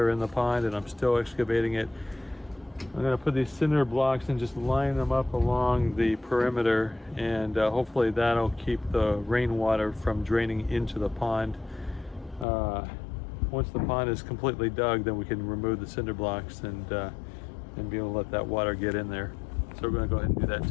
in the pond and I'm still excavating it, I'm going to put these cinder blocks and just line them up along the perimeter, and hopefully that'll keep the rainwater from draining into the pond. Once the pond is completely dug, then we can remove the cinder blocks and be able to let that water get in there. So we're going to go ahead and do that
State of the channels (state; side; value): drops out; right; at 12.5 s